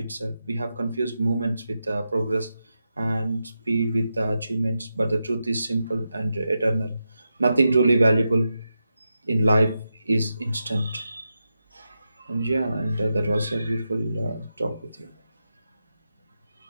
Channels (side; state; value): both; inverted; correlation -0.88